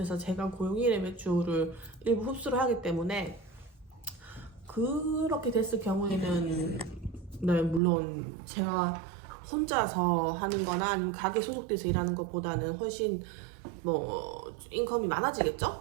제가 고용인의 매출을 일부 흡수를 하기 때문에 그렇게 됐을 경우에는 네, 물론 제가 혼자서 하는 거나 아니면 가게 소속돼서 일하는 것보다는 훨씬 뭐 인컴이 많아지겠죠?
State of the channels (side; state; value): left; drops out; at 7.8 s